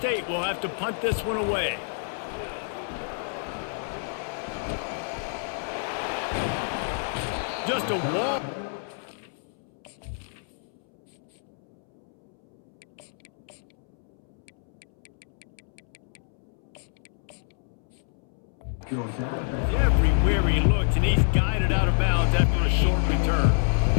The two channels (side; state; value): right; silent; 60 dB below the other